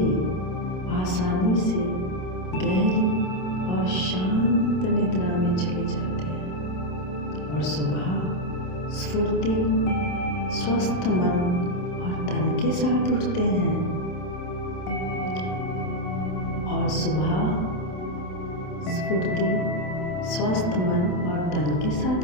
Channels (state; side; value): late; right; 27 ms